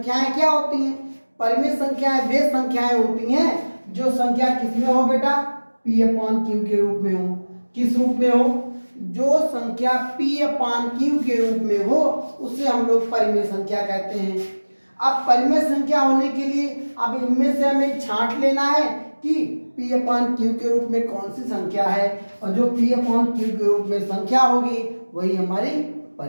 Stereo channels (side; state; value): both; inverted; correlation -1.00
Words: क्या होती हैं। परिमेय संख्याएं वे संख्याएं होती हैं जो संख्या किसमें हो बेटा, P/Q के रूप में हो। किस रूप में हो? जो संख्या P/Q के रूप में हो उसे हम लोग परिमेय संख्या कहते हैं। अब परिमेय संख्या होने के लिए अब इनमें से हमें छांट लेना है कि P/Q के रूप में कौन सी संख्या है, और जो P/Q के रूप में संख्या होगी वही हमारी